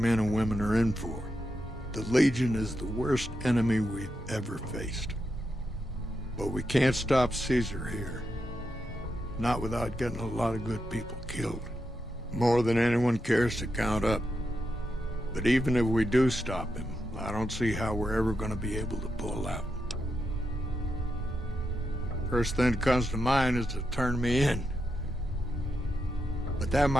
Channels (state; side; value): normal; both; correlation 0.85